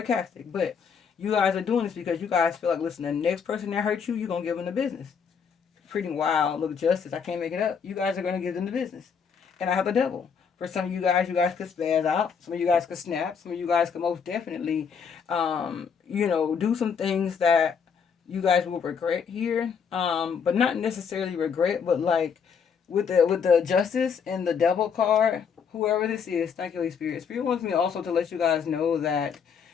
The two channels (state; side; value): quieter; right; 6.6 dB